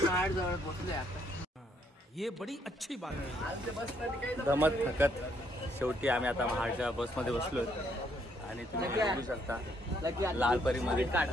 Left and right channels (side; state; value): both; normal; correlation 0.71